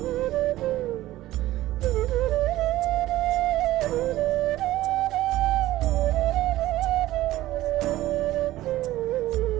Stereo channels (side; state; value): left; quieter; 15.8 dB